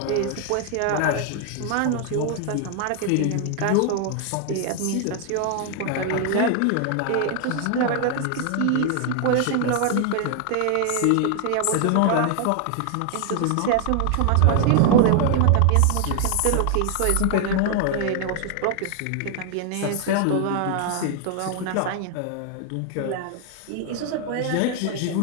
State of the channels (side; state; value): both; different; correlation 0.00